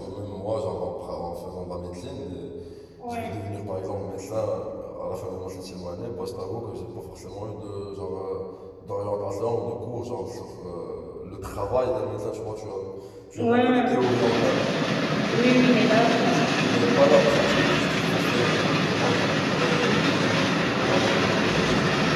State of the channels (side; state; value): both; identical; correlation 1.00